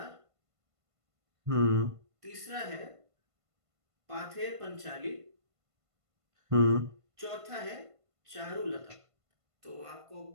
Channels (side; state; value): left; late; 1.5 ms